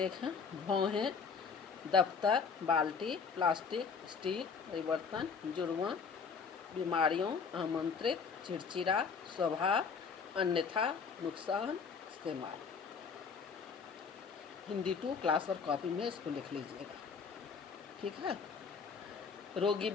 हैं। भौहें दफ्तर, बाल्टी, प्लास्टिक, स्टील, परिवर्तन, जुर्मा, बीमारियों, आमंत्रित, चिड़चिड़ा, स्वभाव, अन्यथा, नुकसान, इस्तेमाल। हिंदी 2 क्लास और कॉपी में इसको लिख लीजिएगा, ठीक है। रोगी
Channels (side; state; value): right; quieter; 5.7 dB